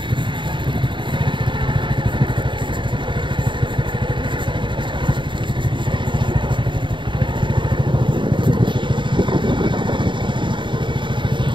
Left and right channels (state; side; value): late; left; 0.23 ms